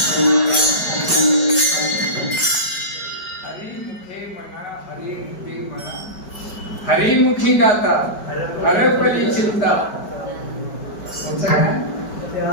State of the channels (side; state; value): right; late; 4.9 ms